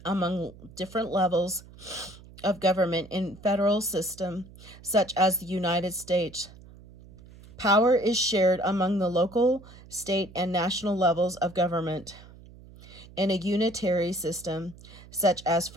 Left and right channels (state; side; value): noise; right; hum, 20 dB below the sound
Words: among different levels of government in federal system, such as the United States. Power is shared among the local, state, and national levels of government. In a unitary system, such as